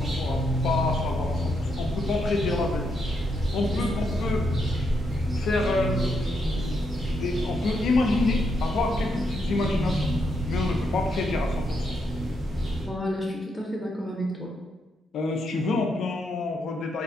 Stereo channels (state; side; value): normal; both; correlation 0.80